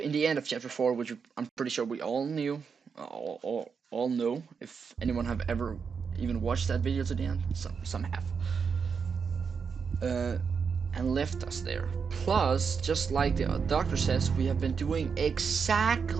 the end of Chapter 4, which I'm pretty sure we all knew, all know. If anyone have ever even watched that video to the end, some have. And left us there. Plus, just like the doctor says, we have been doing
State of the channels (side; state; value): left; quieter; 5.9 dB